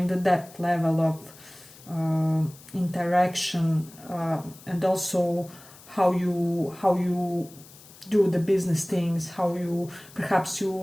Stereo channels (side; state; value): left; noise; hiss, 21 dB below the sound